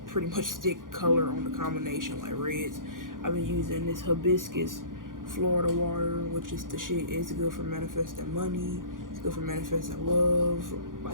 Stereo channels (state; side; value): late; left; 0.90 ms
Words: pretty much stick color on the combination, like reds. I've been using this hibiscus Florida water, which is the shit. It's good for manifesting money. It's good for manifesting love.